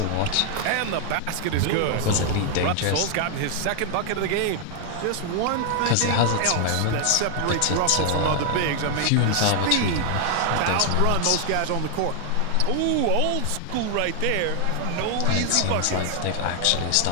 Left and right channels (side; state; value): both; different; correlation 0.00